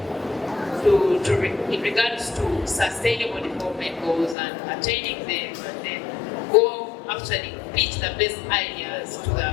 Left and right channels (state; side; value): drops out; right; at 4.4 s